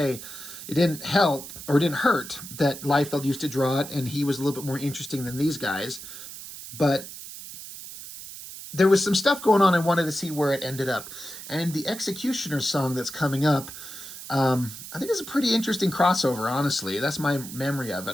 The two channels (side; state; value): right; noise; hiss, 12 dB below the sound